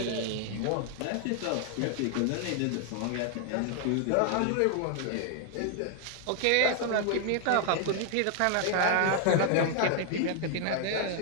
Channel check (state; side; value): different; both; correlation 0.00